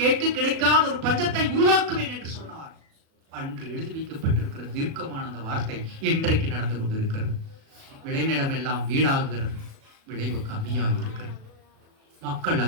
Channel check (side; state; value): left; late; 37 ms